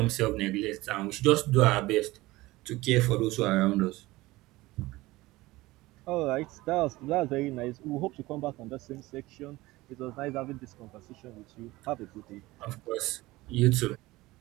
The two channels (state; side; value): quieter; left; 19.4 dB